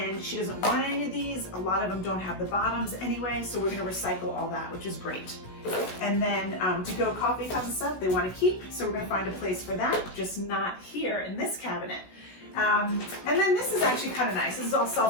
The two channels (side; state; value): right; late; 16 ms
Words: she doesn't want any of these. A lot of them don't have the bottoms anyway, so we're going to recycle all that, which is great. And then to go coffee cups and stuff they want to keep, so we're going to find a place for that, just not here in this cabinet. And then this is actually kind of nice. This is all